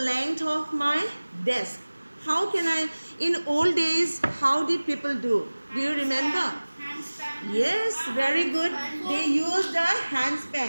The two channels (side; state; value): both; inverted; correlation -1.00